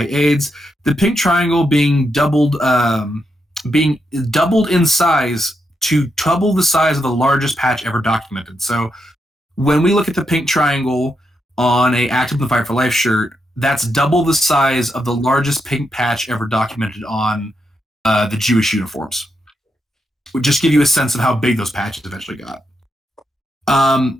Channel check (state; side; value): normal; both; correlation 0.83